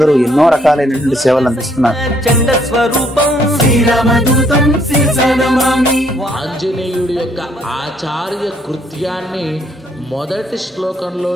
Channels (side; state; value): both; normal; correlation 0.68